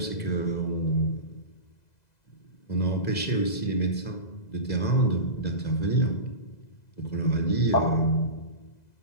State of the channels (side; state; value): right; late; 2.0 ms